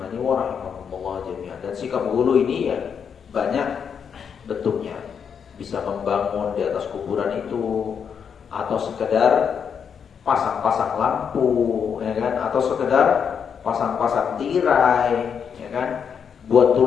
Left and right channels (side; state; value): right; quieter; 7.1 dB